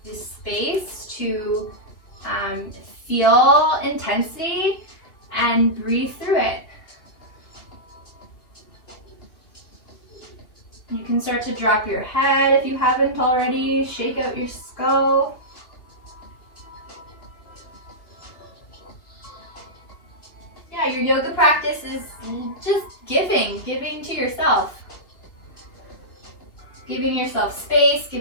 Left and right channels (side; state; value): right; late; 2.5 ms